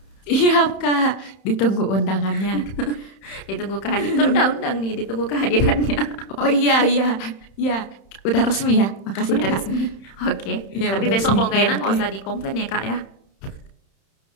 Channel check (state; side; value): late; right; 31 ms